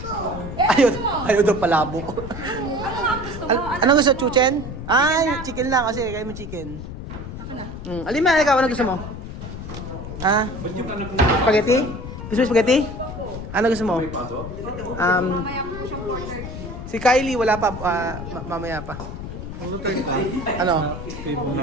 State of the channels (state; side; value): noise; left; rumble, 9 dB below the sound